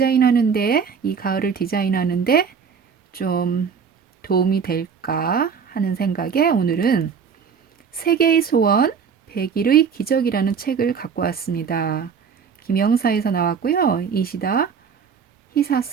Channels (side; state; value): left; quieter; 6.5 dB